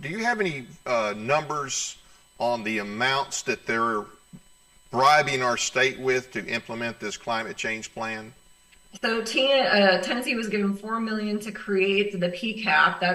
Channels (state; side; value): identical; both; correlation 1.00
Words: do you have any numbers on the amounts that they're bribing our state with to implement this climate change plan? So Tennessee was given $4 million to create the PCAP,